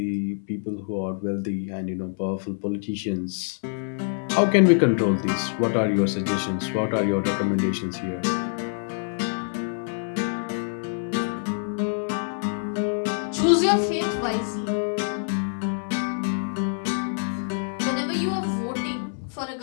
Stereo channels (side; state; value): right; silent; 61 dB below the other